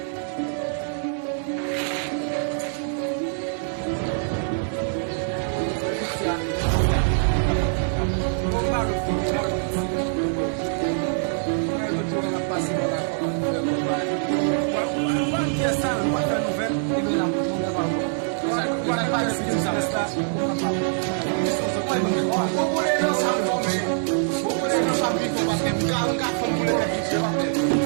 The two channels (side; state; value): left; silent; digital silence